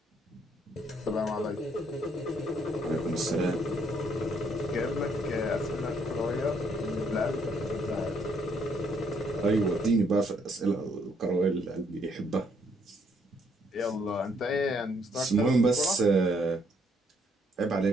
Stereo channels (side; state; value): both; normal; correlation 0.69